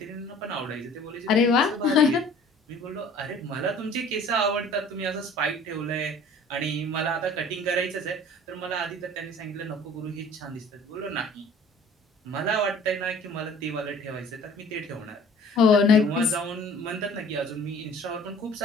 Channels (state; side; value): normal; both; correlation 0.50